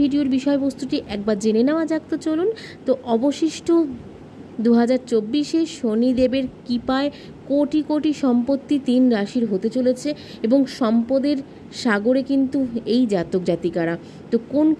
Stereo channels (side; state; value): both; identical; correlation 1.00